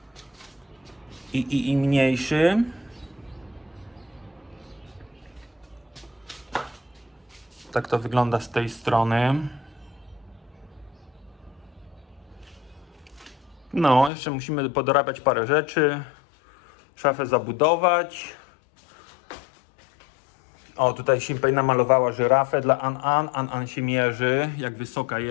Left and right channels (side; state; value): right; drops out; at 14.1 s